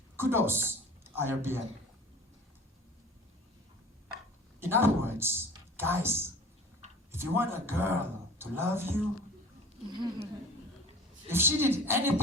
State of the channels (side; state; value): both; normal; correlation 0.41